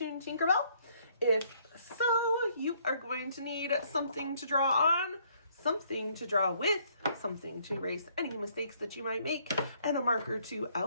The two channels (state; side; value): inverted; both; correlation -0.66